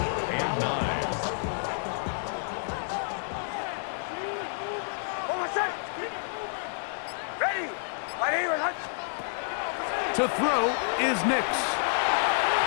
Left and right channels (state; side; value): silent; right; digital silence